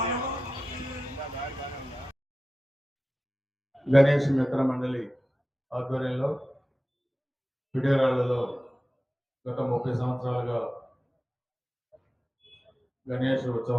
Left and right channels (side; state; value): both; normal; correlation 0.94